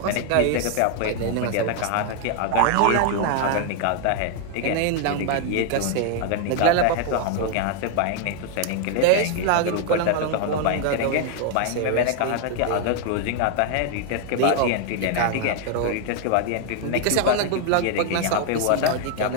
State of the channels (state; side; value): different; both; correlation 0.00